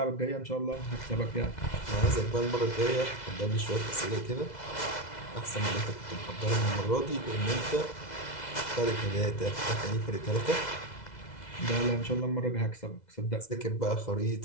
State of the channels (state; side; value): late; right; 2.0 ms